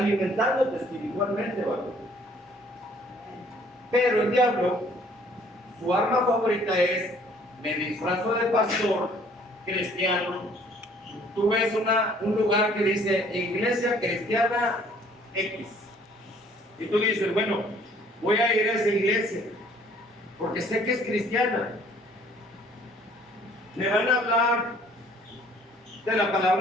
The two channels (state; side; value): normal; both; correlation 0.58